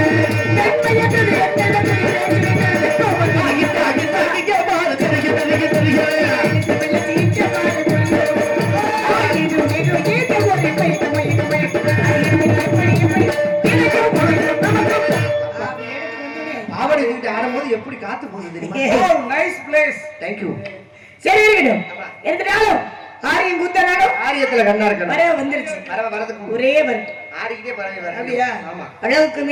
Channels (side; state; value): both; identical; correlation 1.00